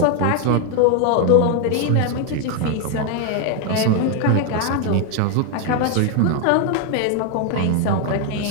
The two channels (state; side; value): different; both; correlation 0.01